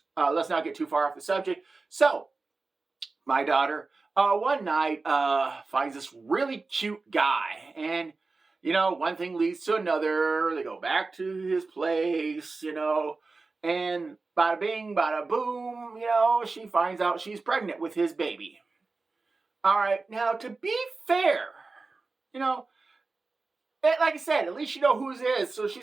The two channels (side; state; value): left; quieter; 3.8 dB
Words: let's not get too far off the subject. So, my daughter, one night, finds this really cute guy. And, one thing leads to another. They go back to his place, and bada bing, bada boom, she finds out she's pregnant with his baby. All right, now, to be fair, like I said, at least you know whose is, so